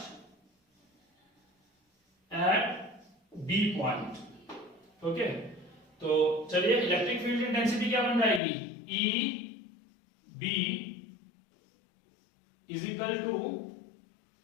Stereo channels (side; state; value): right; drops out; at 8.4 s